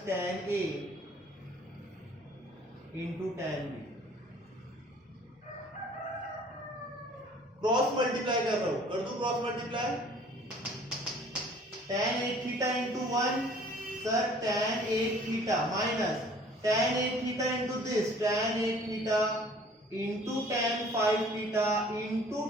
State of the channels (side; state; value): both; normal; correlation 0.53